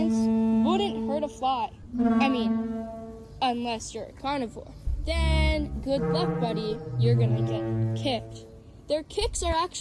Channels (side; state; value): both; identical; correlation 1.00